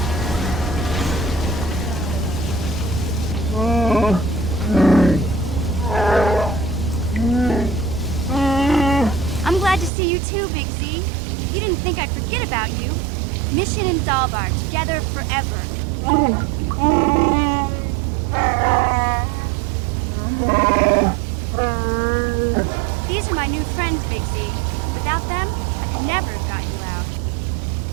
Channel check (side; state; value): left; drops out; at 9.9 s